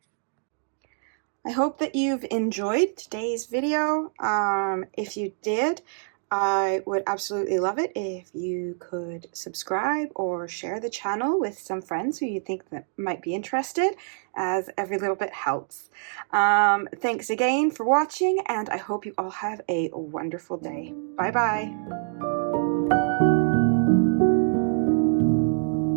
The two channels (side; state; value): left; silent; digital silence